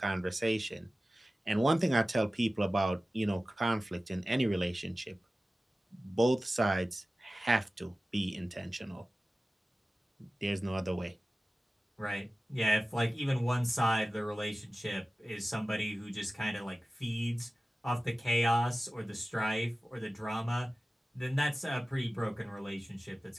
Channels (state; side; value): normal; both; correlation 0.96